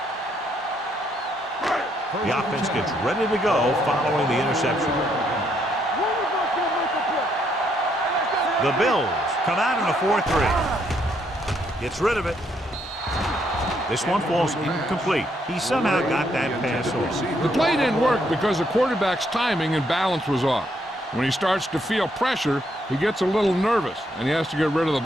The offense gets ready to go following the interception. The Bills come out in a 4-3. Gets rid of it. This one falls incomplete. He somehow got that pass off. The play didn't work because the quarterback's timing and balance was off. When he starts to feel pressure, he gets a little nervous, and he has to get rid of the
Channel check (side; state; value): both; normal; correlation 0.73